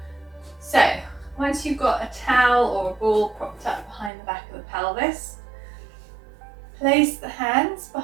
So once you've got a towel or a ball propped up behind the back of the pelvis, place the hands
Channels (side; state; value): left; drops out; at 4.1 s